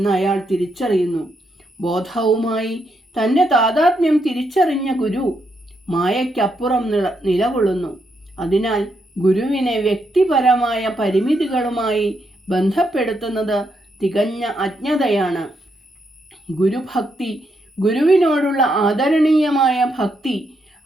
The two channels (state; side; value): normal; both; correlation 0.79